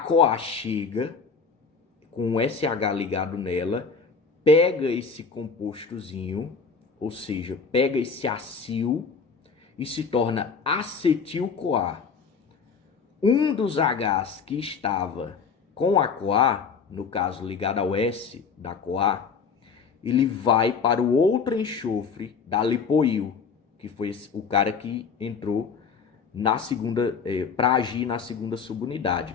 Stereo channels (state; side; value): quieter; right; 5.5 dB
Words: chega com o SH ligado nela, pega esse compostozinho, ou seja, pega esse acil e se torna acetil-CoA. Um dos Hs que estava com a CoA, no caso ligado ao S da CoA, ele vai para o outro enxofre da lipoil, que foi o cara que entrou na segunda, para agir na segunda